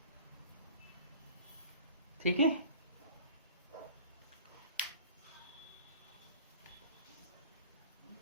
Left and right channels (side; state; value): both; inverted; correlation -0.44